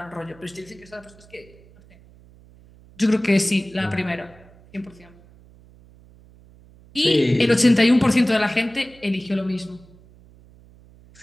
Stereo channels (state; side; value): noise; right; hum, 25 dB below the sound